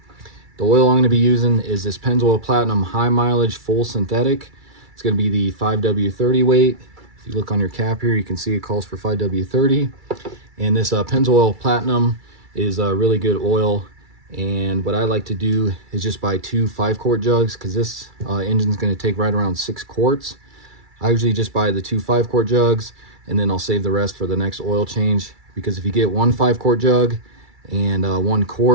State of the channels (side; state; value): left; late; 2.3 ms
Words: The oil I'm going to be using is this Pennzoil Platinum High Mileage Full Synthetic. It's going to be the 5W30 weight. If you look on your cap here, you can see it calls for 5W30. And this Pennzoil Platinum is a really good oil. And what I like to do is just buy 2 5-quart jugs, because this engine's going to take right around 6 quarts. I usually just buy the 2 5-quart jugs, and then I'll save the rest for the next oil change. Because if you get 1 5-quart jug and 1